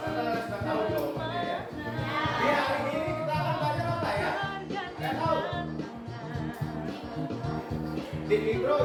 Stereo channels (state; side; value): identical; both; correlation 1.00